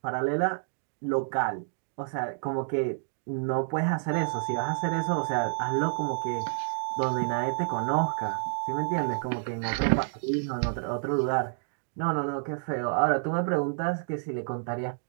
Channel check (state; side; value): silent; left; digital silence